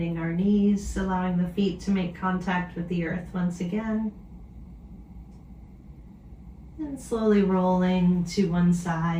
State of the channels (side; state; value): both; identical; correlation 1.00